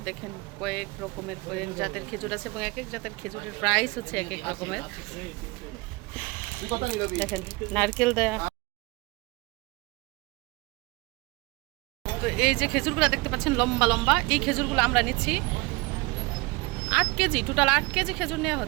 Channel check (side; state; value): left; quieter; 24.4 dB